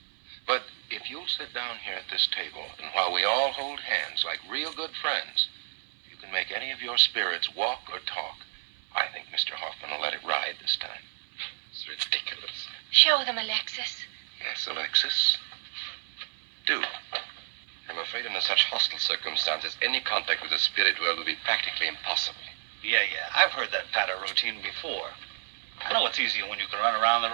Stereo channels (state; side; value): silent; left; 58 dB below the other